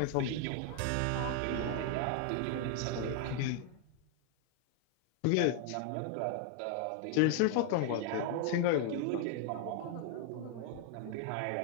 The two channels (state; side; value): different; both; correlation 0.00